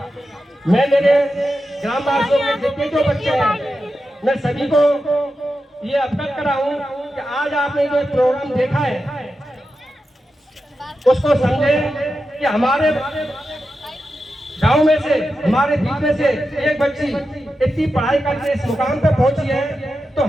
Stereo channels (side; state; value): both; normal; correlation 0.90